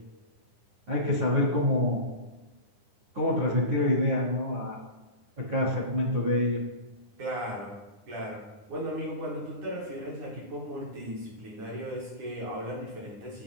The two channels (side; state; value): left; late; 9.8 ms